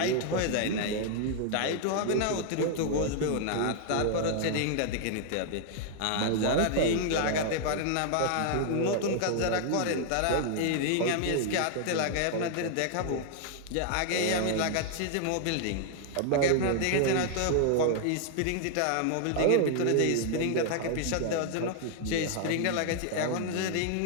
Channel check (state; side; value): different; both; correlation 0.00